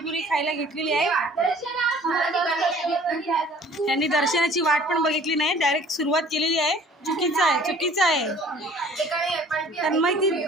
खायला घेतलेली आहे. त्यांनी दर्शनाची वाट पण बघितली नाही, डायरेक्ट सुरुवात केलेली आहे. चुकीचं आहे.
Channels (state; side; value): normal; both; correlation 0.52